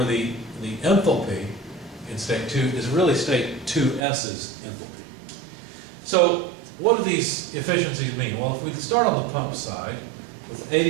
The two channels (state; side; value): drops out; left; at 4.0 s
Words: the enthalpy in state 2 is really state 2S's enthalpy. So what do these efficiencies mean? Well, if we start on the pump side with